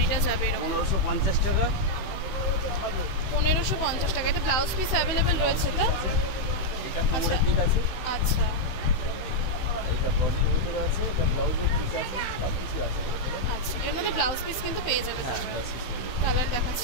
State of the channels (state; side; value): late; right; 16 ms